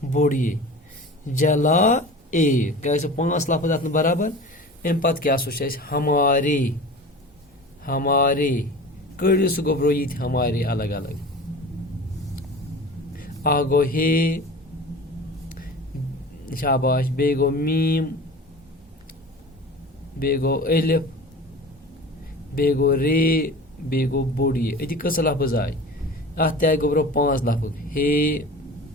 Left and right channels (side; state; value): both; normal; correlation 0.36